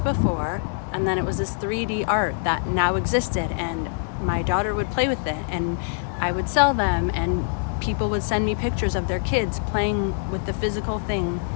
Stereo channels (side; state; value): right; silent; digital silence